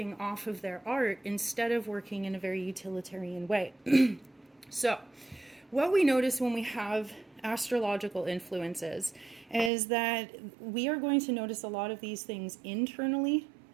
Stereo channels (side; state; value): left; drops out; at 9.7 s